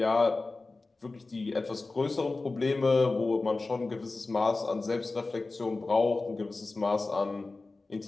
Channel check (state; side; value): quieter; right; 3.5 dB